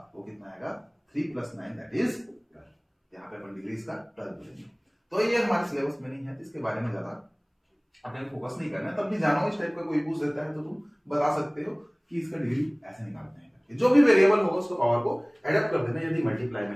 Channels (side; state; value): both; identical; correlation 1.00